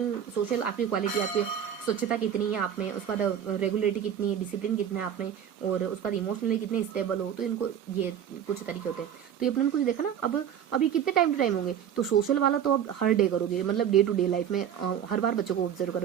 आपकी क्वालिटी, आपकी स्वच्छता कितनी है आप में, उसके बाद रेगुलरिटी कितनी है, डिसिप्लिन कितना है आप में, और उसके बाद इमोशनली कितने स्टेबल हो। तो इनको ये कुछ तरीके होते हैं। तो ये अपने कुछ देखा ना। अब ये कितने टाइम टू टाइम होंगे, तो सोशल वाला तो अब हर डे करोगे, मतलब डे टू डे लाइफ में हर बार बच्चों को ऑब्जर्व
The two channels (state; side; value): quieter; left; 9.1 dB